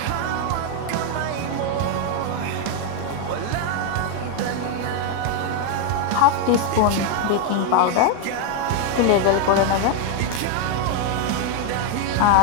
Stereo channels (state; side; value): different; both; correlation 0.01